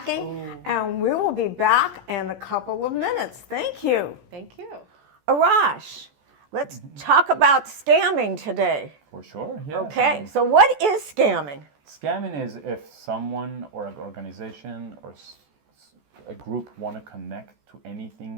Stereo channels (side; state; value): left; late; 14 ms